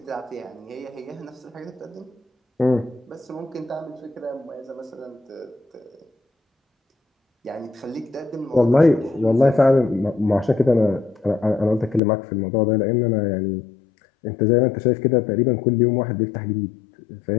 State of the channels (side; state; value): right; drops out; at 12.0 s